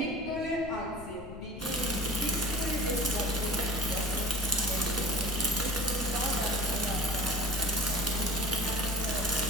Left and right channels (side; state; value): left; noise; rumble, 13 dB below the sound